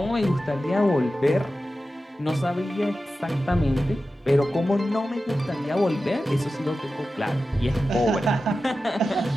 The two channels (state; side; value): normal; both; correlation 0.93